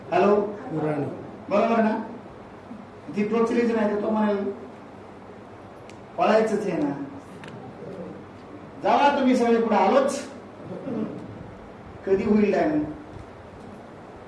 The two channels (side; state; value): both; identical; correlation 1.00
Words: हॅलो, बरोबर ना? ती टोचलीच नाही तर तो म्हणाल पळायचंच आहे ना. जावा तुम्ही सगळे पुढे, आलोच. कधी होईल टाइम?